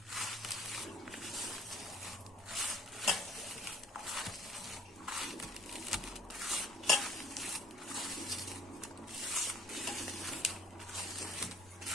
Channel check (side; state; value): both; normal; correlation 0.54